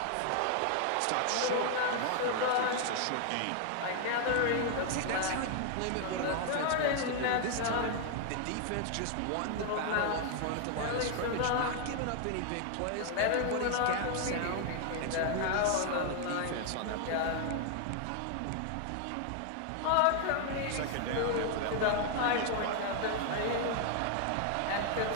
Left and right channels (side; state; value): both; different; correlation 0.00